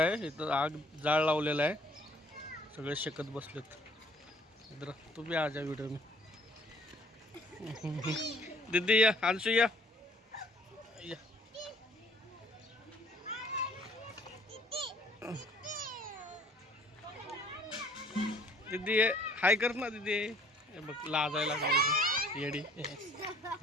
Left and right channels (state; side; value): normal; both; correlation 0.58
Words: इथं आग जाळ लावलेला आहे, सगळे शेकत बसलेत. इधर तू भी आ जा व्हिडिओ में. दीदी या, अंशु या. दीदी ये हाय कर ना दीदी. हे बघ लाजायला लागली येडी.